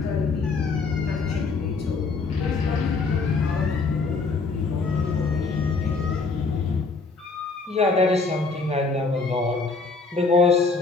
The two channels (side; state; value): right; quieter; 4.2 dB